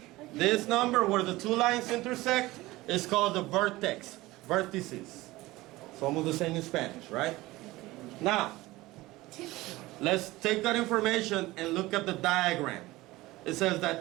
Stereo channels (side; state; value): left; quieter; 19.1 dB